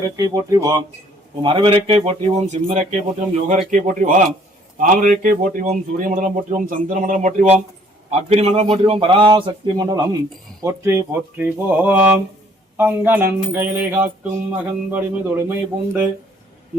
போற்றிவோம், மரவிறக்கை போற்றிவோம், சிம்மரக்கை போற்றிவோம், யோகரக்கை போற்றிவோம், தாமரக்கை போற்றிவோம், சூரிய மண்டலம் போற்றிவோம், சந்திர மண்டலம் போற்றிவோம், அக்னி மண்டலம் போற்றிவோம், பராசக்தி மண்டலம் போற்றி போற்றிவோம். அங்கனன் கையிலை காக்கும் மகன்படிமை தொழுமை பூண்டு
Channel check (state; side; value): normal; both; correlation 0.61